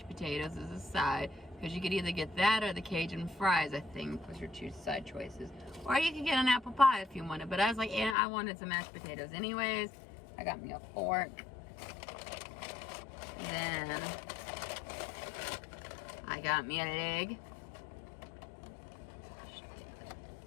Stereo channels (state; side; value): drops out; right; at 8.2 s